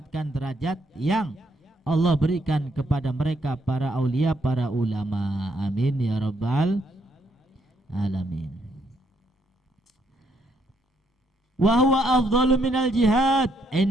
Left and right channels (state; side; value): normal; both; correlation 0.74